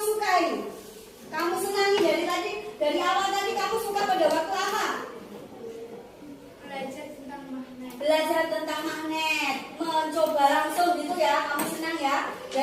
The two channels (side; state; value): both; identical; correlation 1.00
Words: sukai? Kamu senangi dari awal tadi kamu suka pada waktu apa? Belajar tentang magnet, mencoba langsung gitu ya, kamu senang ya,